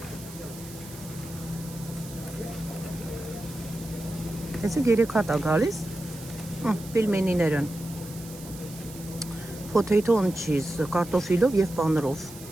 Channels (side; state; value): right; noise; hiss, 16 dB below the sound